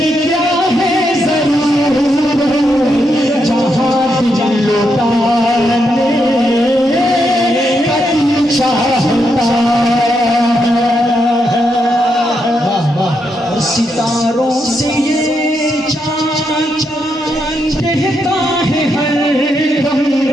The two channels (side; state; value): both; normal; correlation 0.81